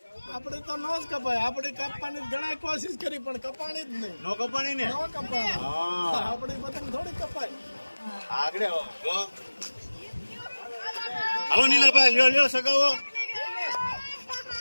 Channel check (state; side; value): inverted; both; correlation -1.00